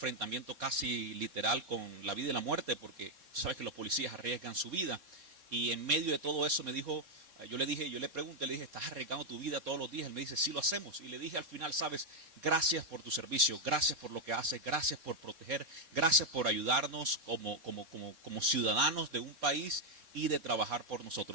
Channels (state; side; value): late; left; 4.3 ms